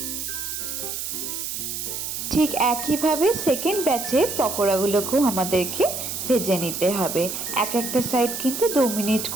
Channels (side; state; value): right; noise; hiss, 5 dB below the sound